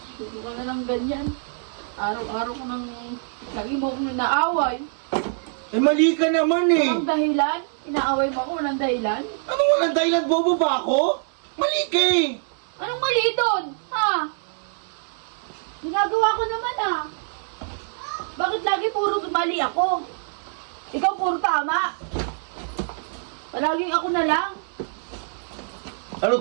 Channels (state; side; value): silent; left; 62 dB below the other